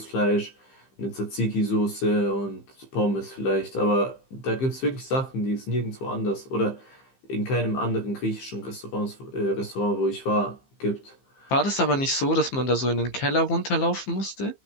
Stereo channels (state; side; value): late; right; 15 ms